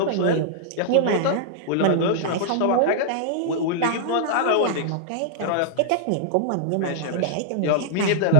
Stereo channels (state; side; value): different; both; correlation -0.01